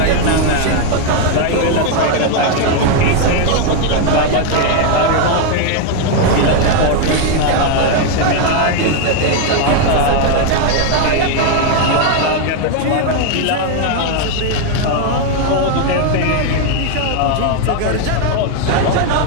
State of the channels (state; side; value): different; both; correlation 0.01